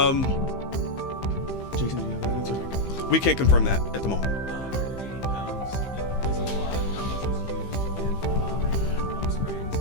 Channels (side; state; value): right; late; 15 ms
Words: Jason, do you have that answer? We can't confirm that at the moment. 80 pounds is a lot. How much was used in the bombing in Palm Springs?